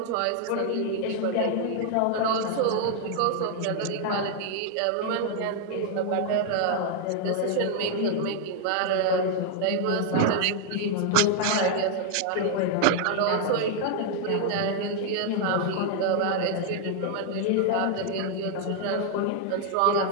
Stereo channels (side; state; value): both; different; correlation 0.00